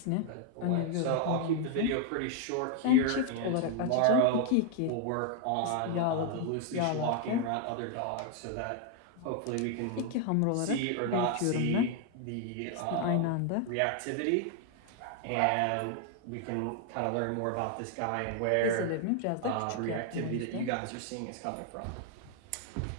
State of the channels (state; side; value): different; both; correlation 0.01